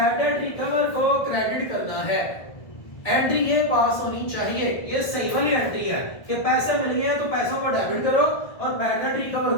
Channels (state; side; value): late; right; 1.6 ms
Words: डेट रिकवर को क्रेडिट करना है। एंट्री ये पास होनी चाहिए, ये सही वाली एंट्री है कि पैसे मिल गए तो पैसों को डेबिट करो और बैड डेट रिकवर